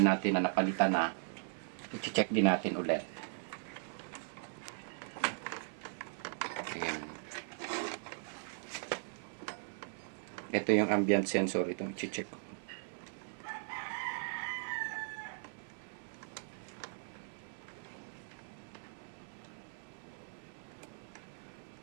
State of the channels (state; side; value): silent; left; 52 dB below the other